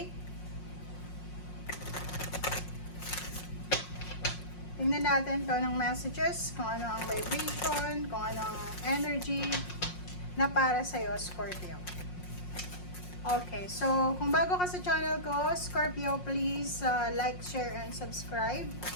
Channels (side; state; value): right; late; 5.5 ms